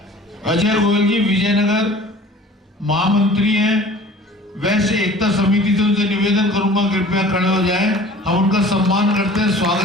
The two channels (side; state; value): both; normal; correlation 0.46